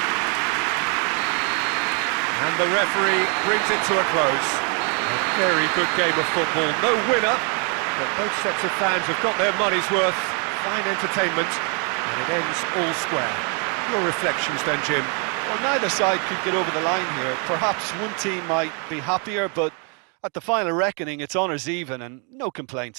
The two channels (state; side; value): quieter; left; 37.5 dB